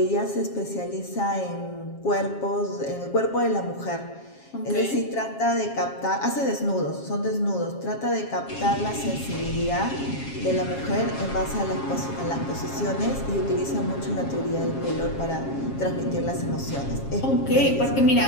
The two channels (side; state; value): right; late; 7.4 ms